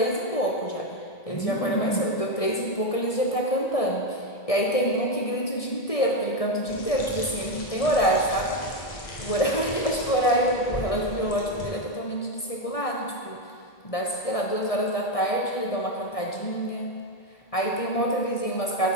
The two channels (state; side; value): late; right; 1.6 ms